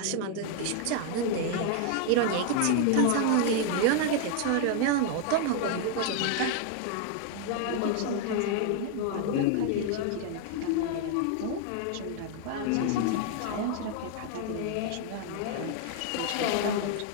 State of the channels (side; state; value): both; different; correlation 0.00